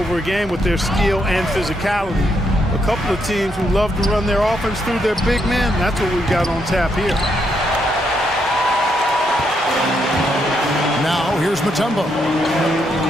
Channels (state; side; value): normal; both; correlation 0.77